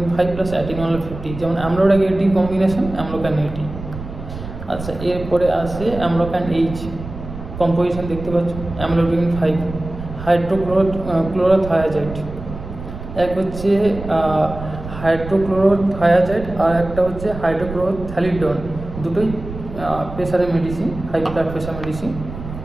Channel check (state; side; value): noise; right; rumble, 11 dB below the sound